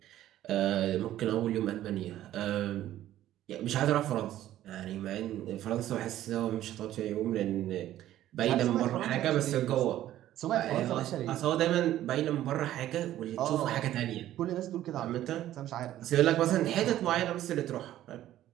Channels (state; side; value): quieter; left; 13.2 dB